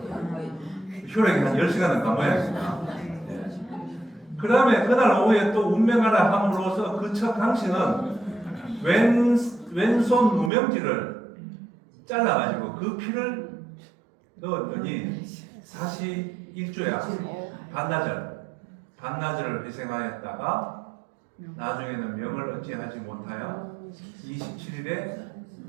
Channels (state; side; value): drops out; left; at 10.5 s